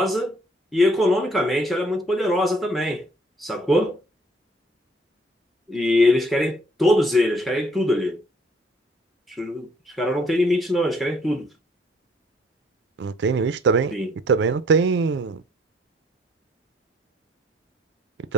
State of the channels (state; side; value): normal; both; correlation 0.63